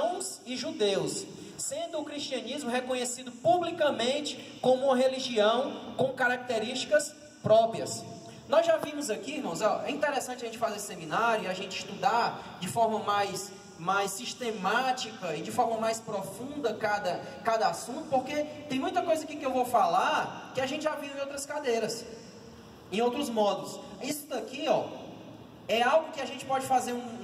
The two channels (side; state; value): both; identical; correlation 1.00